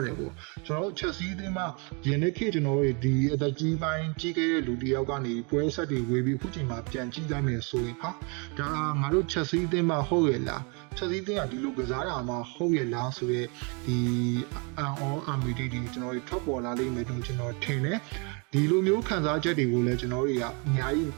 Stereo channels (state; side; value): quieter; left; 33.4 dB